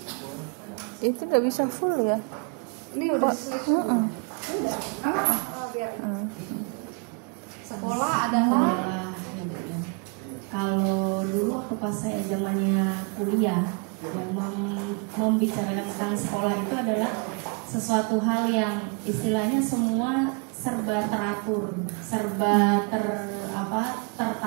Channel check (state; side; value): quieter; left; 33.9 dB